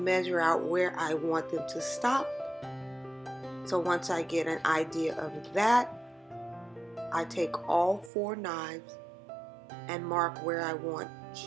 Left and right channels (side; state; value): left; drops out; at 8.1 s